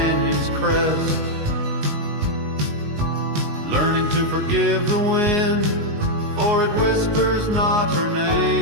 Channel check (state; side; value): late; left; 19 ms